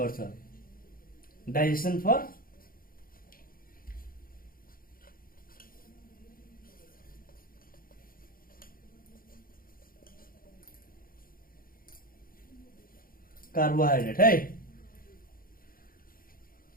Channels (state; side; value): late; right; 0.42 ms